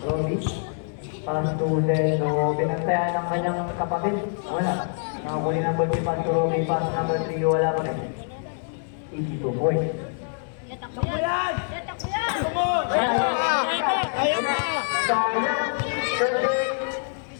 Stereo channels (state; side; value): silent; right; 62 dB below the other